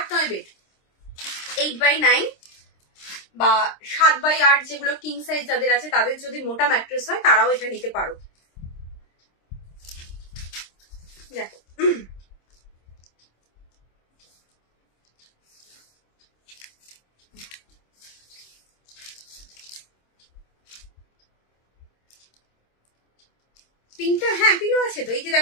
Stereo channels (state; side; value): late; right; 26 ms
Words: বেড, 8x9 বা 7x8 যেগুলো কিং সাইজ যাদের আছে, তাদের যদি মোটা ম্যাট্রেস হয় তারাও এটা নিতে পারো। দেখো পিঙ্কটা, হ্যাঁ পিলো আছে তো, এই যে